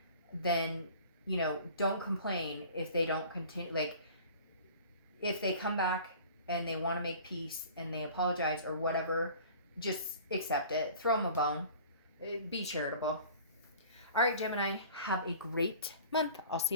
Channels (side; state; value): both; inverted; correlation -0.45